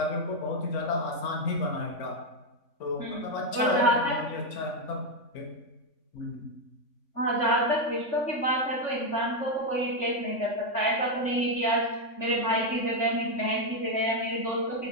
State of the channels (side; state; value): right; late; 3.5 ms